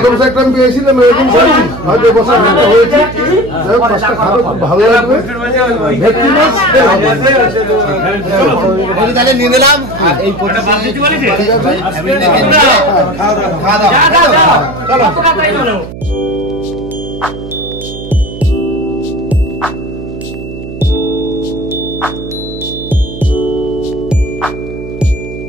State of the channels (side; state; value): right; noise; hum, 12 dB below the sound